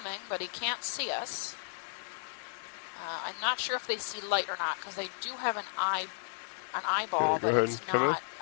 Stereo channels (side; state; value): right; silent; digital silence